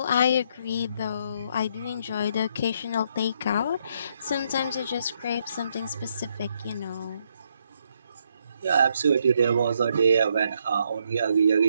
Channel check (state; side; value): inverted; both; correlation -0.74